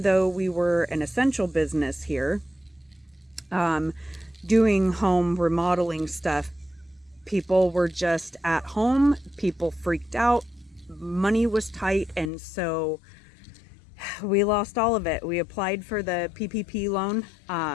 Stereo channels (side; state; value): right; drops out; at 12.3 s